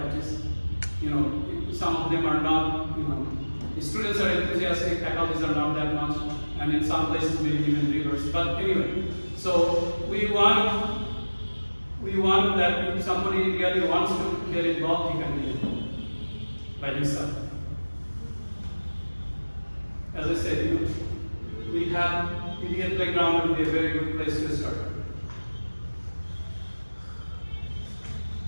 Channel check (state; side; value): inverted; both; correlation -1.00